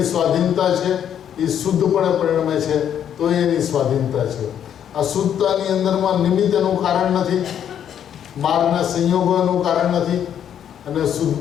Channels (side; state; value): right; quieter; 9.4 dB